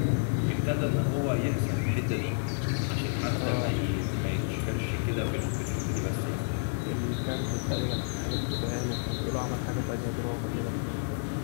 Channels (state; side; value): silent; right; digital silence